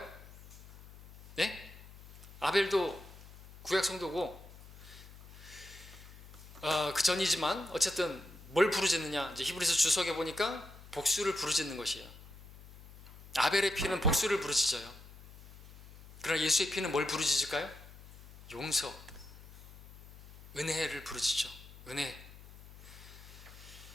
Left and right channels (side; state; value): left; noise; hum, 18 dB below the sound